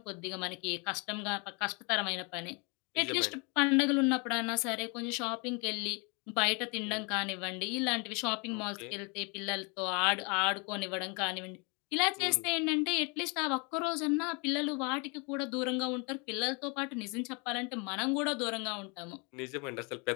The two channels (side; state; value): right; quieter; 32.0 dB